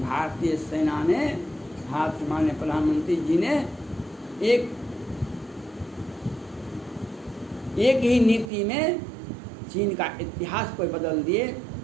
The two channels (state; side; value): drops out; left; at 8.5 s